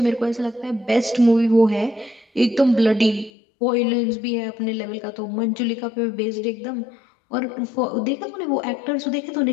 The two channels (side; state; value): right; drops out; at 3.3 s